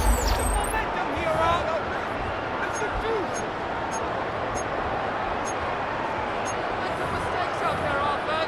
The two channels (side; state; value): both; identical; correlation 1.00